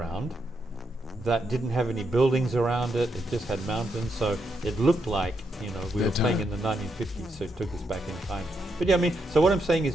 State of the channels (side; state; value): both; normal; correlation 0.81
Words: that didn't have any buildings around it. It just had mountains, so it looked like we were playing in the 1950s. So it took us back in time. But yeah, I mean, so what I'm saying